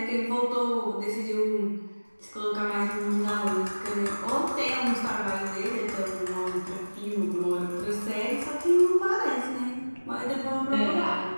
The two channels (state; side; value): inverted; both; correlation -1.00